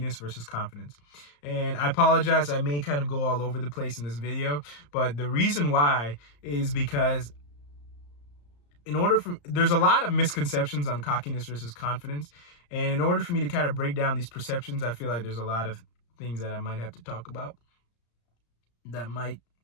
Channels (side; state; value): right; late; 34 ms